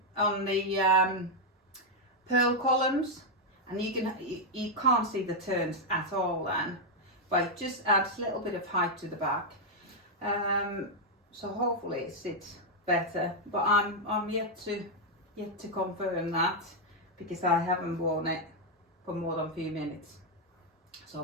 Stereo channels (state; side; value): normal; both; correlation 0.00